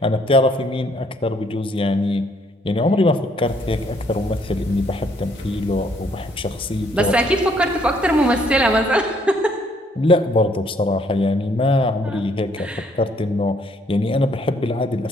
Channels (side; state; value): both; normal; correlation 0.66